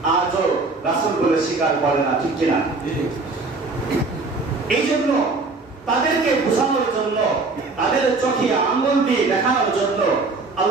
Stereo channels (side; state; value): left; quieter; 3.7 dB